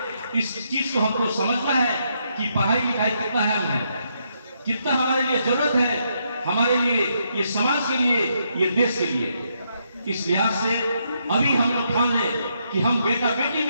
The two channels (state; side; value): inverted; both; correlation -0.78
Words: इस चीज को हमको समझना है कि पढ़ाई लिखाई कितना अहम है, कितना हमारे लिए जरूरत है, हमारे लिए, ये समाज के लिए, ये देश के लिए। इस लिहाज से अभी हम लोग ठान लें कि हम बेटा बेटी